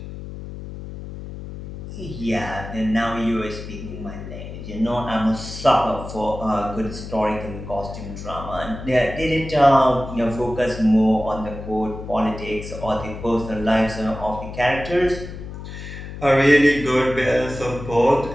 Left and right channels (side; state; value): left; noise; hum, 10 dB below the sound